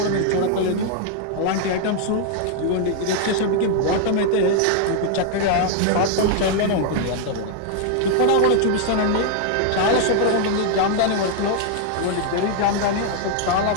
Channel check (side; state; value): both; different; correlation 0.00